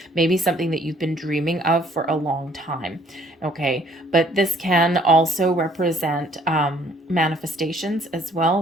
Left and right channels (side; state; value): both; normal; correlation 0.61